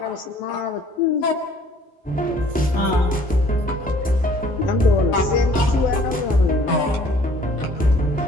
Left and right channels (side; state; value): both; normal; correlation 0.56